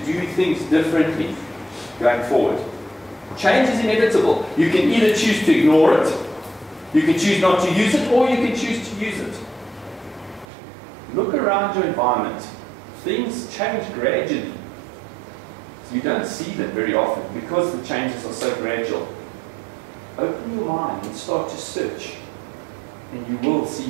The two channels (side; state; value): left; drops out; at 10.5 s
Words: things differently going forward? Change is inevitable. You can either choose to ignore it, you can choose not to use it, or you can choose to use it. Look around your environment. Things change gradually. So you don't see them very often because the changes are so gradual. Open your mind and start to search, and you will